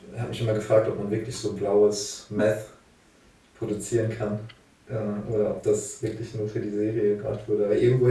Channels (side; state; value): both; identical; correlation 1.00